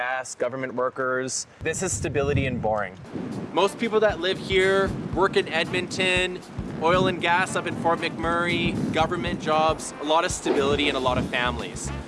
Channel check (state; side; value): identical; both; correlation 1.00